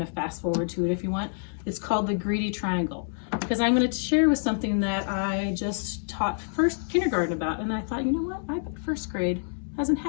of fast forward to it if you want. It's called The Greedy Triangle, because I'm going to share with something that I just taught first kindergarten about, and I thought, you know what, I bet first grade hasn't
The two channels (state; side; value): silent; right; digital silence